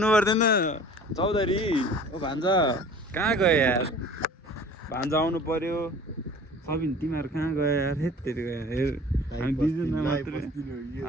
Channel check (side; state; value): both; normal; correlation 0.45